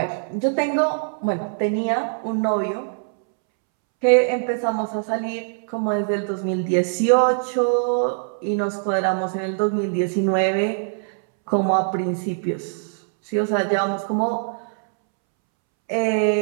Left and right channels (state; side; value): silent; left; 64 dB below the other